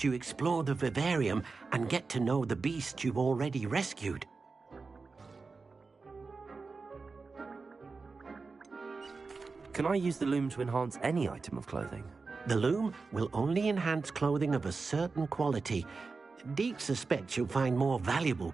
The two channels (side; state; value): left; quieter; 4.3 dB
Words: you explore the vivarium and get to know the beasts you've already rescued. Can I use the loom to enhance any item of clothing? The loom will only enhance clothing of a certain quality. Deke suspects you'll find more valuable